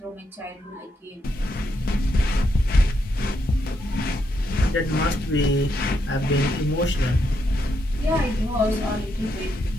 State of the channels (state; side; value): normal; both; correlation 0.79